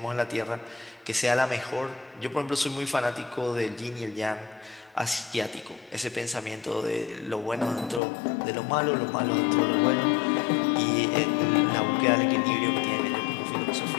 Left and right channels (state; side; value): drops out; right; at 8.0 s